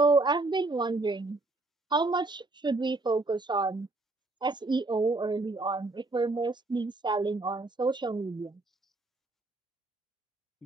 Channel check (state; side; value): quieter; left; 3.1 dB